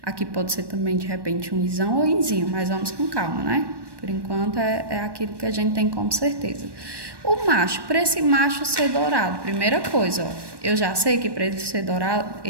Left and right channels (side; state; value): left; late; 1.2 ms